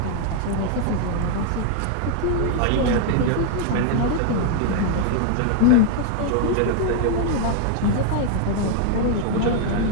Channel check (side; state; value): both; different; correlation 0.00